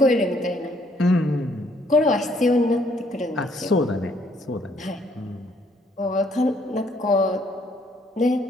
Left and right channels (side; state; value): both; normal; correlation 0.67